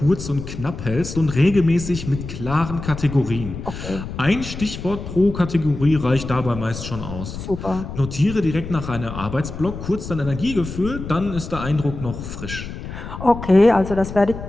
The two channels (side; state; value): left; noise; rumble, 9 dB below the sound